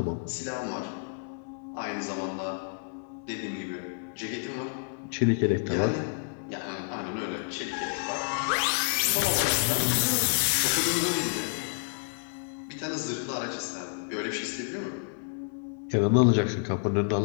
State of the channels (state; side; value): silent; right; 58 dB below the other